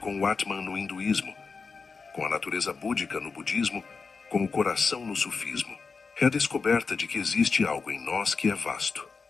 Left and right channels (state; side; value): quieter; right; 4.8 dB